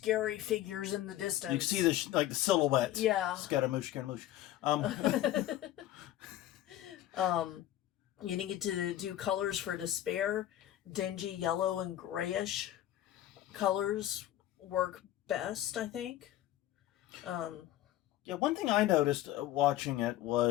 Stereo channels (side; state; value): right; quieter; 13.5 dB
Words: figures in the distance. You can see the silhouette. Yeah. Scaramouche, Scaramouche. You need to do colors for despair. Dingy yellow and grayish colors work best, I think. Yeah, one thing I noticed watching it